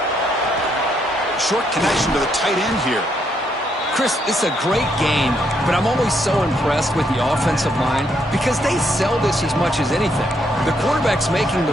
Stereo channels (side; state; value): both; normal; correlation 0.74